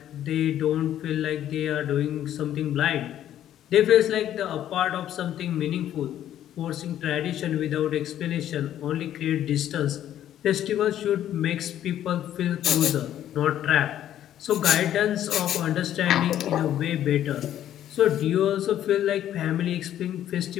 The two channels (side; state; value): right; quieter; 11.5 dB